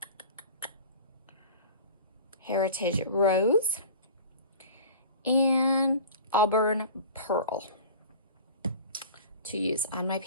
Heritage Rose, and Auburn Pearl to use on my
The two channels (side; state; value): both; inverted; correlation -0.40